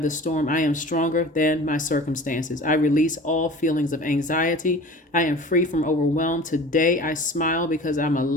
the storm. I am stronger than my circumstances. I release all feelings of anxiety. I am free from overwhelm. Today I smile because I'm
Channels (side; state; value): both; normal; correlation 0.40